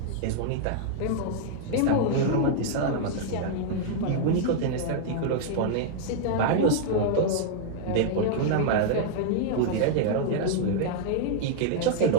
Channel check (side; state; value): both; different; correlation -0.01